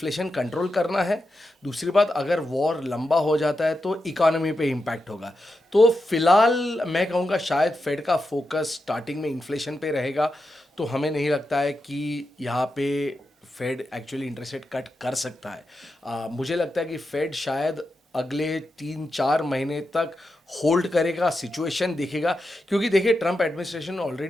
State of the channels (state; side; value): normal; both; correlation 0.88